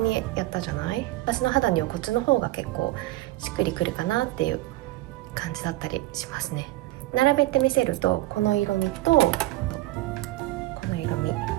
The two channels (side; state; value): left; quieter; 17.3 dB